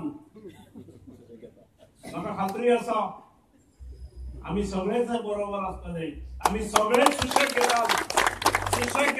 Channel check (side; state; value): both; identical; correlation 1.00